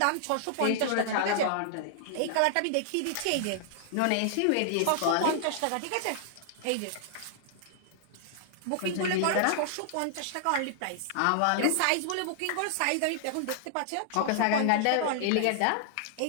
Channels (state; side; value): different; both; correlation -0.01